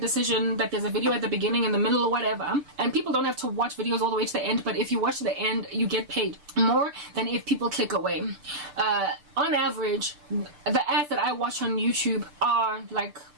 that there's a video at the beginning, in the middle, or whatever, and people don't have to watch videos all the way to the end, but if you watch to the end, you get paid more than if people click away. On average, the ads that I watch on YouTube are like,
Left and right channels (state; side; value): late; left; 6.8 ms